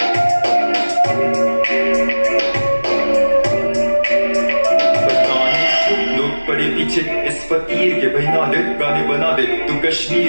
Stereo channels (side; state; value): both; inverted; correlation -1.00